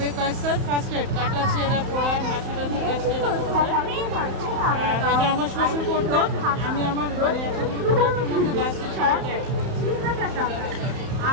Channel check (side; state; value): left; late; 31 ms